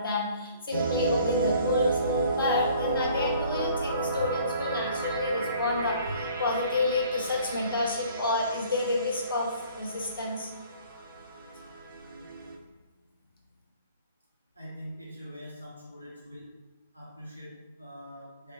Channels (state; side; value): inverted; both; correlation -0.54